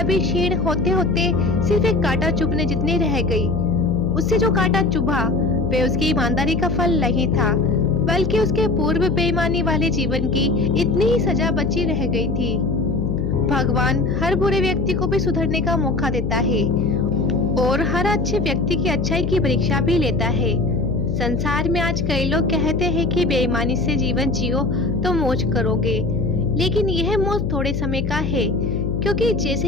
भी क्षीण होते होते सिर्फ एक कांटा चुभने जितनी रह गई। उससे जो कांटा चुभा वे उसकी ईमानदारी का फल नहीं था, बल्कि उसके पूर्व बेईमानी वाले जीवन की इतनी ही सजा बची रह गई थी। भगवान हर बुरे व्यक्ति को भी सुधरने का मौका देता है और हर अच्छे व्यक्ति की अच्छाई की परीक्षा भी लेता है। संसार में आज कई लोग कहते हैं कि बेईमानी से जीवन जियो तो मौज करोगे, लेकिन यह मौज थोड़े समय का है, क्योंकि जैसे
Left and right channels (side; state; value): left; noise; hum, 2 dB below the sound